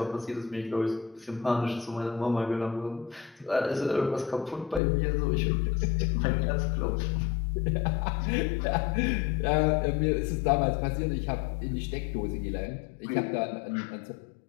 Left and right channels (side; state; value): right; drops out; at 4.8 s